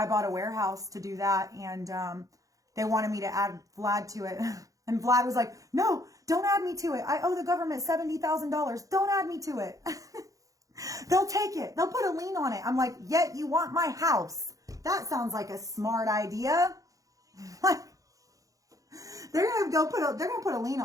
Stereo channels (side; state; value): left; late; 0.16 ms